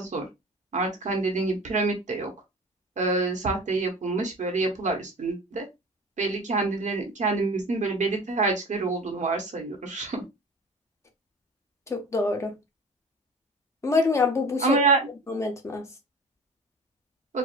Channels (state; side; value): normal; both; correlation 0.38